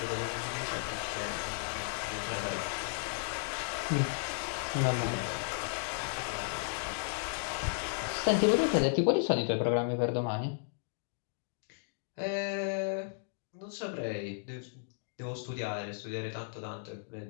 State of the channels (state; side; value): silent; right; digital silence